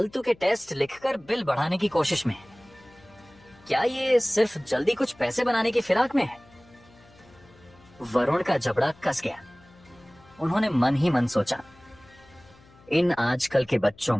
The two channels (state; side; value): noise; left; hum, 27 dB below the sound